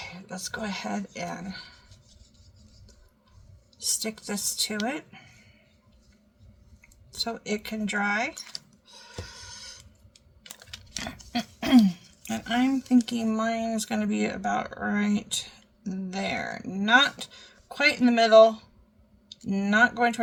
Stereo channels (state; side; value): identical; both; correlation 1.00